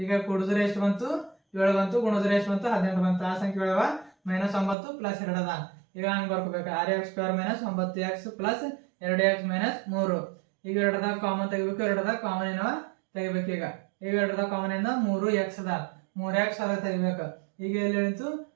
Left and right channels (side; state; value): left; drops out; at 4.8 s